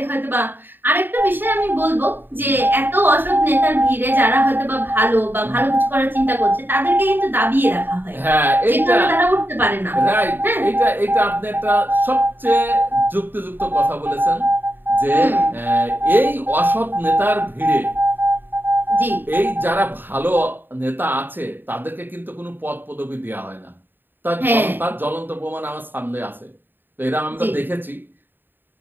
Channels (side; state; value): left; late; 0.094 ms